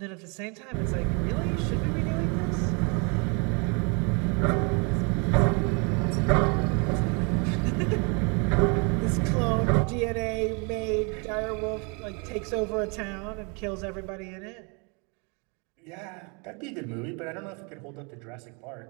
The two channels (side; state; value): left; quieter; 33.0 dB